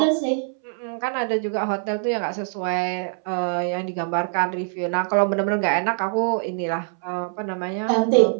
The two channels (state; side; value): silent; left; 63 dB below the other